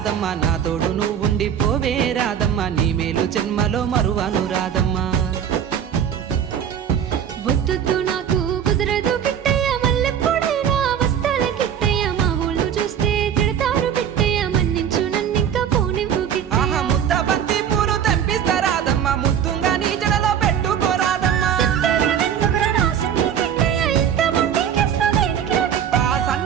నా తోడు నువ్వుండి పోవే రాదమ్మ, నీ మేలు జన్మలో మరువను రాదమ్మ. వద్దు నాకు కుదరదు కిట్టయ్య, మల్లెప్పుడైనా వస్తాల కిట్టయ్య, మా ఊళ్ళు చూస్తే తిడతారు కిట్టయ్య, మన్నించు నన్నింకా పోనివ్వు కిట్టయ్య. ముద్ద బంతి పూలు తెంపిస్తా రాదమ్మ, ముద్దుంగా నీ జడలో పెట్టుకోరాదమ్మ.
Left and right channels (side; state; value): left; quieter; 8.8 dB